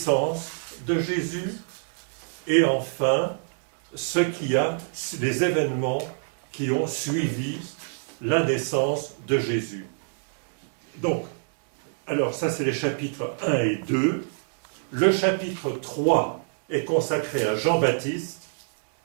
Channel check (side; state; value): left; silent; digital silence